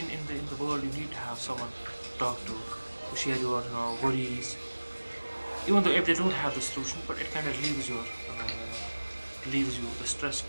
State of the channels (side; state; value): both; inverted; correlation -1.00